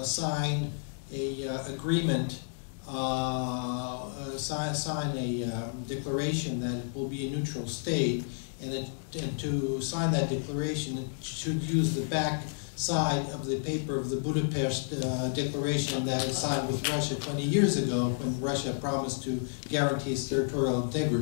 sign a agreement, sign a declaration that it will be a neutral state, and to sign that declaration, it should use the back side of the paper of the Budapest Declaration that was signed with Russia 20 years ago, when Russia promised to guarantee its territorial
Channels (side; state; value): right; silent; 57 dB below the other